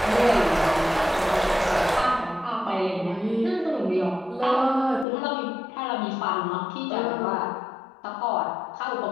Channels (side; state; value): right; drops out; at 5.1 s